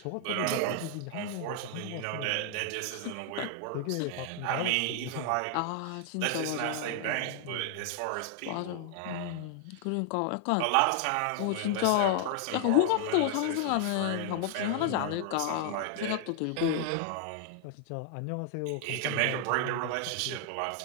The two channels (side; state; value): both; different; correlation 0.00